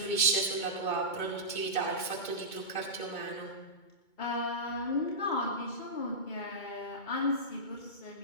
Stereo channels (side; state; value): right; late; 2.2 ms